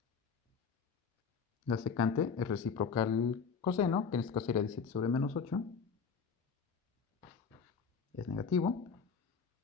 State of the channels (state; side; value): quieter; right; 5.8 dB